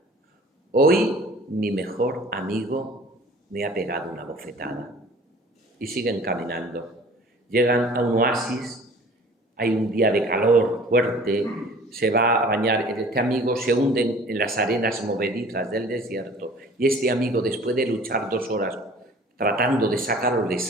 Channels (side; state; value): both; normal; correlation 0.48